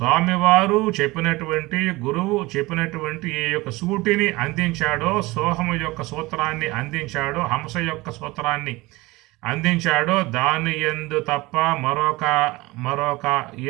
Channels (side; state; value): left; quieter; 21.3 dB